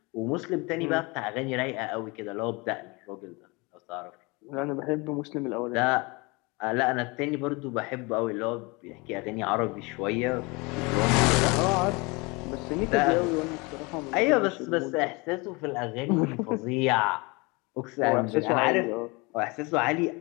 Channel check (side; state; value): right; quieter; 26.8 dB